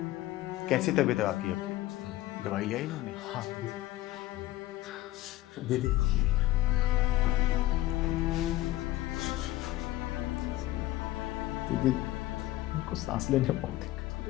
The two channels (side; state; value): right; quieter; 16.2 dB